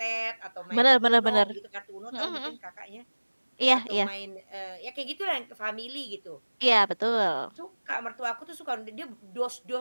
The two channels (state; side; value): inverted; both; correlation -1.00